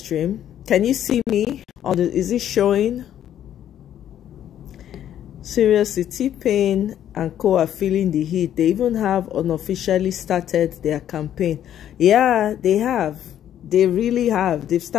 Can you see me on the? Is it showing? Seriously, T-Pain and co are feeling the heat. They even have unofficially started their campaign. Yeah, they have. They really have. They've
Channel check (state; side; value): quieter; right; 10.7 dB